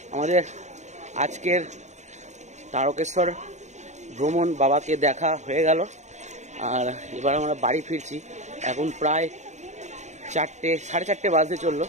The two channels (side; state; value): left; late; 0.34 ms